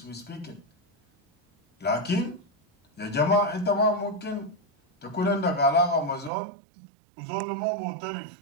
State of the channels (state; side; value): drops out; left; at 6.3 s